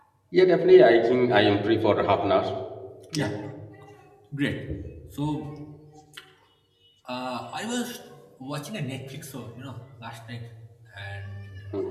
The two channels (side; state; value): both; identical; correlation 1.00